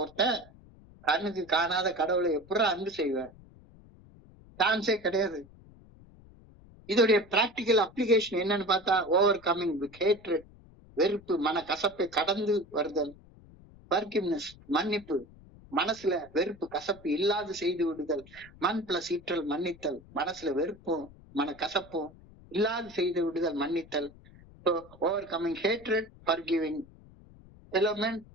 ஒருத்தன் கண்ணுக்கு காணாத கடவுளை எப்படி அன்பு செய்வார்? சான்ஸே கிடையாது. இதோடைய பிராக்டிக்கல் அப்ளிகேஷன் என்னன்னு பார்த்தா, ஓவர் கமிங் வித் ஹேட்ரட், வெறுப்பு, மன கசப்பை கடந்து வருதல், ஃபர்கிவ்னஸ், மன்னிப்பு, மனசுல வெறுப்பு கசப்பு இல்லாது செய்து விடுதல், மண் பிளஸ் ஈற்றல் மன்னித்தல், மனசுல வெறுப்பும் மன கசப்பும் இல்லாது செய்து விடுதல் மன்னித்தல். So overcoming hatred, forgiving, element,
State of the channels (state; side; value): noise; left; rumble, 23 dB below the sound